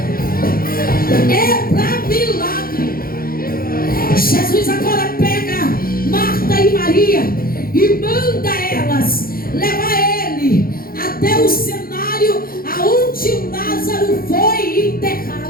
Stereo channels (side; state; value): right; late; 0.42 ms